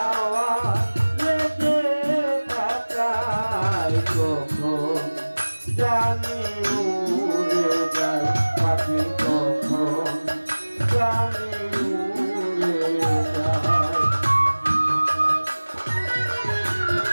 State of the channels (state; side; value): inverted; both; correlation -1.00